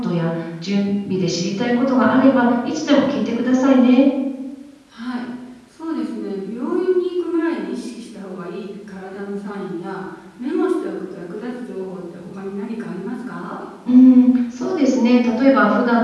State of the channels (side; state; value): both; identical; correlation 1.00